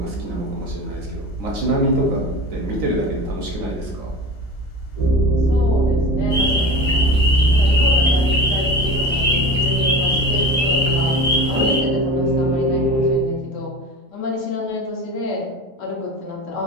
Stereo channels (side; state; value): both; normal; correlation 0.32